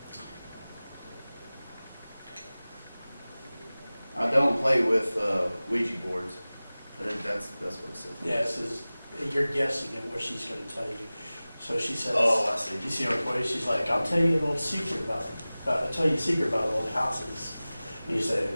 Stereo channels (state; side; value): inverted; both; correlation -0.98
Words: I don't play with Ouija boards. That's what it says. Yeah, it says, you're guessing at what she's gonna tell you. So she says, Oh, I see. you see her voice, she's like, I'll tell you an old secret I'll tell you a secret about old houses. And you say,